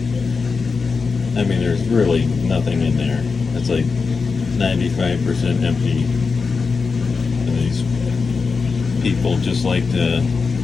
I mean, there's really nothing in there. It's like 95% empty. These people just like to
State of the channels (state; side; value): quieter; right; 4.8 dB